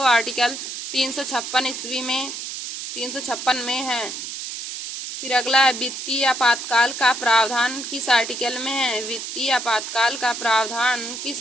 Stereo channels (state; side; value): noise; right; hiss, 7 dB below the sound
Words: आर्टिकल 356 में है। फिर अगला है वित्तीय आपातकाल का प्रावधान किस आर्टिकल में है। वित्तीय आपातकाल का प्रावधान